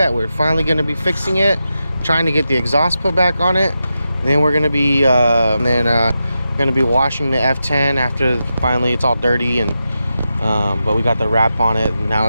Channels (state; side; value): inverted; both; correlation -0.89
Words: We're finally going to be fixing it, trying to get the exhaust put back on it. Then we're going to be washing the F10 after finally it's all dirty, and but we got the wrap on it, and now